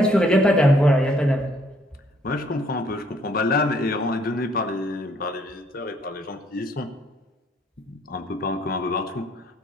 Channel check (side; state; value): both; normal; correlation 0.65